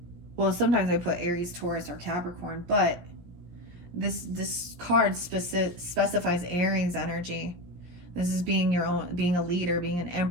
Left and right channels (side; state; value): left; late; 17 ms